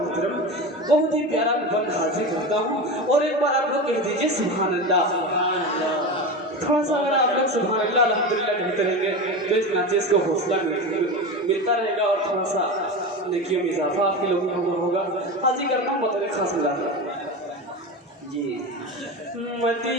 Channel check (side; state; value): both; normal; correlation 0.24